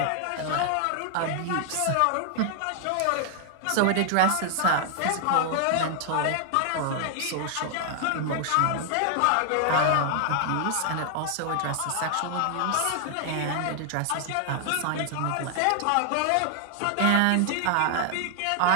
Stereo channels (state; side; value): different; both; correlation 0.00